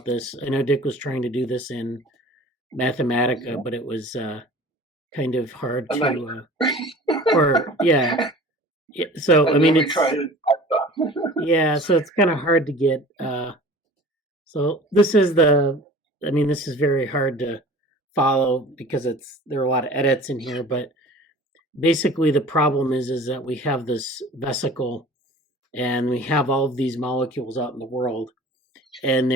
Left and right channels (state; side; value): normal; both; correlation 0.43